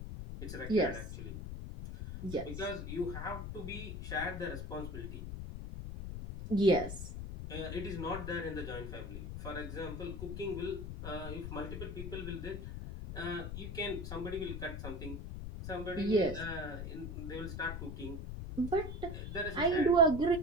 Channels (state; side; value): noise; left; rumble, 6 dB below the sound